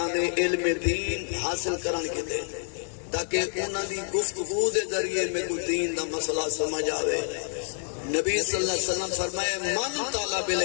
علم دین حاصل کرن کے دے تاکہ انہاں دی گفتگو دے ذریعے میں کوئی دین دا مسئلہ سمجھ آوے نبی صلی اللہ علیہ وسلم فرمائے من طالب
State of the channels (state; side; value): silent; right; digital silence